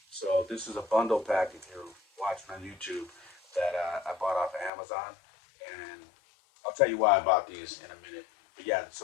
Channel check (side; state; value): right; drops out; at 4.7 s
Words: So this is a bundle pack if you're watching on YouTube that I bought off of Amazon. And I'll tell you why I bought these in a minute. But yeah,